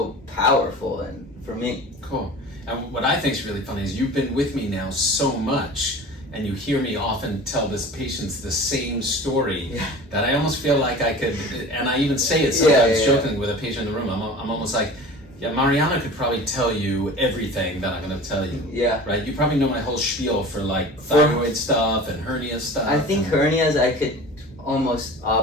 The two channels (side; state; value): both; normal; correlation 0.39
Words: powerful and for me. Cool. And what I think is really funny is you've been with me now so much, and you hear me often tell this patients the same story that I almost feel like I could, and I even say it sometimes joking with a patient in the room. I'm almost like, yeah, Mariano could probably tell you everything that I'm going to tell you. Yeah. Right? You probably know my whole spiel for like thyroid stuff and hernia stuff. I think hernias I could almost